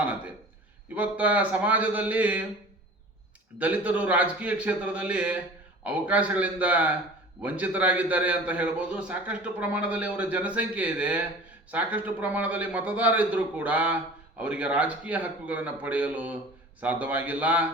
ಇವತ್ತ ಸಮಾಜದಲ್ಲಿ ದಲಿತರು ರಾಜಕೀಯ ಕ್ಷೇತ್ರದಲ್ಲಿ ಅವಕಾಶಗಳಿಂದ ವಂಚಿತರಾಗಿದ್ದಾರೆ ಅಂತ ಹೇಳ್ಬೋದು. ಸಾಕಷ್ಟು ಪ್ರಮಾಣದಲ್ಲಿ ಅವರ ಜನಸಂಖ್ಯೆ ಇದೆ, ಸಾಕಷ್ಟು ಪ್ರಮಾಣದಲ್ಲಿ ಮತದಾರ ಇದ್ದರೂ ಕೂಡ ಅವರಿಗೆ ರಾಜಕೀಯ ಹಕ್ಕುಗಳನ್ನು ಪಡೆಯಲು ಸಾಧ್ಯವಾಗಿಲ್ಲ.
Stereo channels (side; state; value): both; normal; correlation 0.41